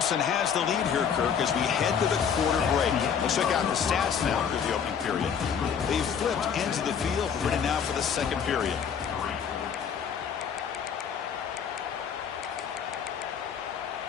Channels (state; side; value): quieter; right; 7.4 dB